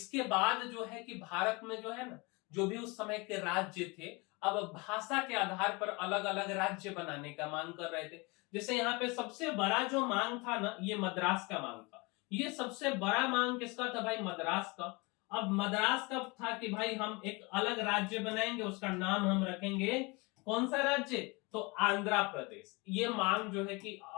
बाद जो है कि भारत में जो है ना, जो भी उस समय के राज्य थे, अब भाषा के आधार पर अलग अलग राज्य बनाने का मांग कर रहे थे। जैसे यहाँ पे सबसे बड़ा जो मांग था ना, ये मद्रास का मांग था। ये सबसे बड़ा मांग किसका था भाई? मद्रास का। अब मद्रास का था कि भाई हम एक अलग राज्य बनाएंगे, उसका नाम हम रखेंगे कौन सा राज्य? तो आंध्र प्रदेश। ये मांग जो है कि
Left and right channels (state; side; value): quieter; right; 26.9 dB